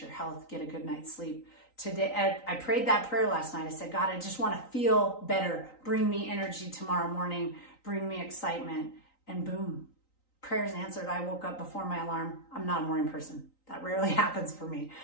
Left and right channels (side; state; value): right; late; 3.9 ms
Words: health, get a good night's sleep. Today, I prayed that prayer last night. I said, God, I just want to feel better. Bring me energy tomorrow morning. Bring me excitement. And boom, prayers answered. I woke up before my alarm. I'm not a morning person. That rarely happens for me.